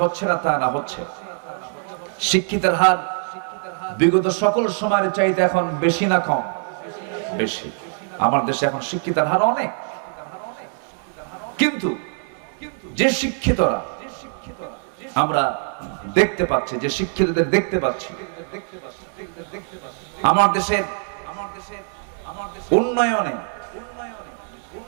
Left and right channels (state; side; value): silent; left; 57 dB below the other